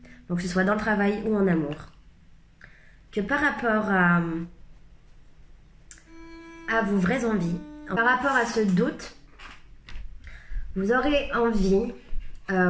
Donc que ce soit dans le travail ou en amour. Que par rapport à vos vraies envies, par rapport à ce doute, vous aurez envie,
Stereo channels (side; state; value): both; identical; correlation 1.00